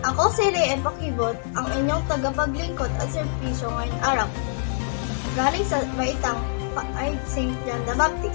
Ako si Rhea Pakibot, ang inyong tagapaglingkod at serbisyo ngayong araw. Galing sa baitang ay St. John the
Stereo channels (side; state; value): right; silent; digital silence